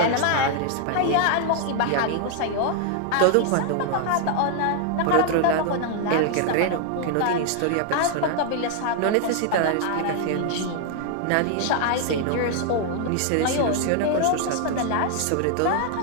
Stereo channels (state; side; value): different; both; correlation 0.00